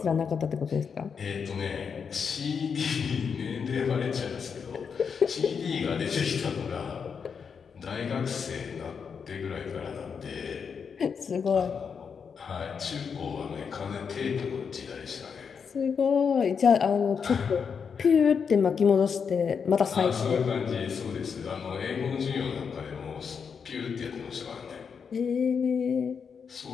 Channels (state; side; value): quieter; right; 6.3 dB